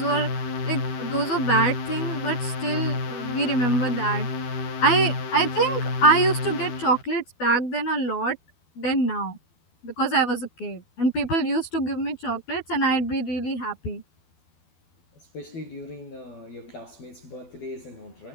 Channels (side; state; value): right; late; 12 ms